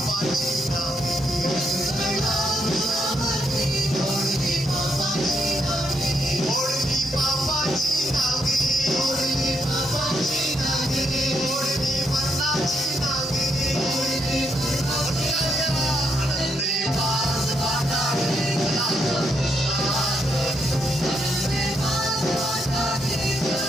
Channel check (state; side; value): normal; both; correlation 0.77